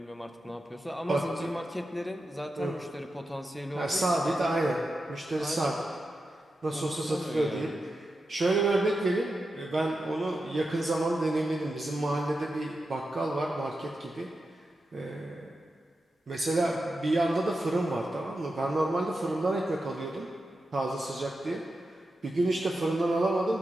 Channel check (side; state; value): both; normal; correlation 0.90